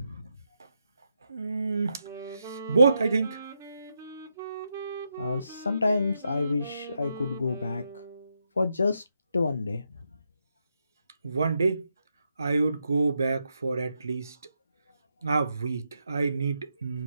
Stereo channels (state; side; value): inverted; both; correlation -0.82